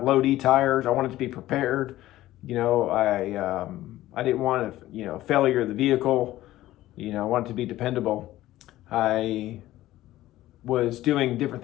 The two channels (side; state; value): right; quieter; 15.3 dB